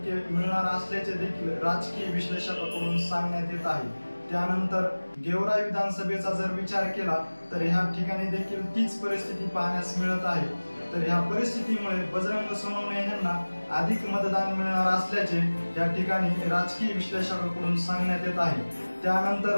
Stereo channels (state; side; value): inverted; both; correlation -1.00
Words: मिळणार असल्याचे देखील राजकीय विश्लेषकांकडून सांगण्यात येत आहे। त्यानंतर गेवराई विधानसभेचा जर विचार केला तर ह्या ठिकाणी देखील तीच परिस्थिती पाहण्यास मिळत आहे। तर ह्या परिस्थितीमुळे बजरंग सोनवणे यांना अधिक मतदान मिळणार असल्याचे या ठिकाणी राजकीय विश्लेषकांकडून सांगण्यात येत आहे।